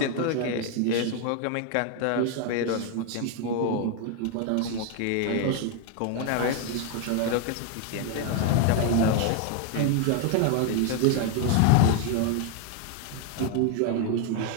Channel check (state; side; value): different; both; correlation 0.01